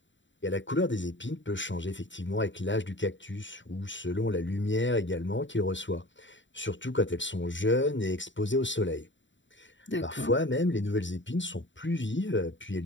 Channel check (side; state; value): right; late; 0.54 ms